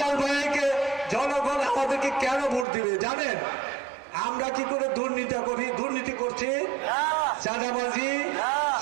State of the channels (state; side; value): drops out; left; at 2.7 s